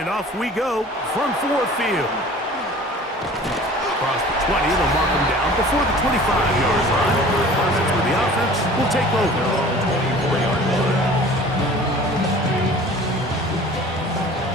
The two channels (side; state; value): both; normal; correlation 0.45